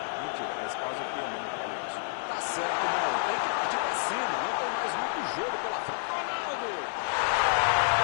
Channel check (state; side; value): silent; right; digital silence